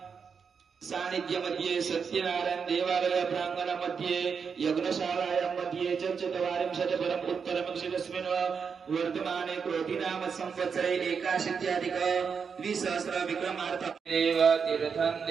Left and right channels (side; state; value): left; quieter; 6.1 dB